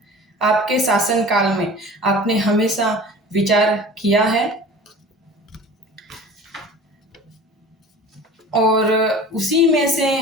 आपके शासनकाल में आपने हमेशा विचार किया है और उसी में से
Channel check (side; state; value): both; normal; correlation 0.40